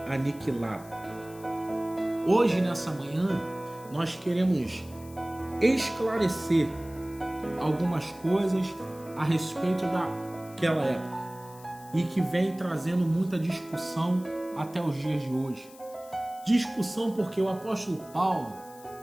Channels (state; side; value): noise; left; hiss, 22 dB below the sound